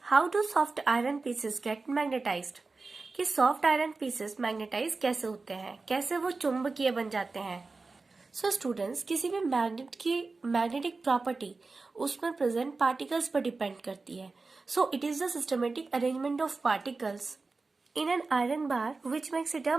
how do soft iron pieces get magnetized? कि सॉफ्ट आयरन पीसेस मैग्नेटाइज कैसे होते हैं, कैसे वो चुंबकीय बन जाते हैं। सो स्टूडेंट्स, किसी भी मैग्नेट की मैग्नेटिक प्रॉपर्टी उसमें प्रेजेंट पार्टिकल्स पर डिपेंड करती है। So it is the systematic arrangement of particles in an iron bar which makes it a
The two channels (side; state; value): left; quieter; 3.9 dB